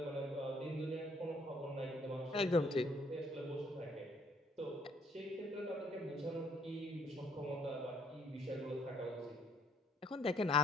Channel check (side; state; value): both; normal; correlation 0.65